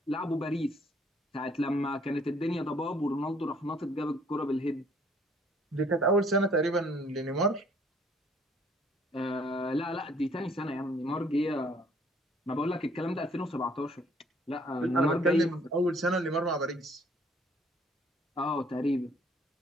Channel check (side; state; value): both; normal; correlation 0.61